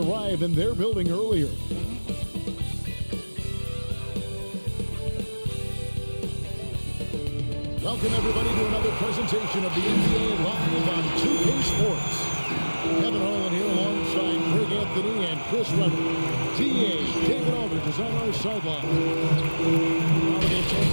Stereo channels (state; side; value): inverted; both; correlation -1.00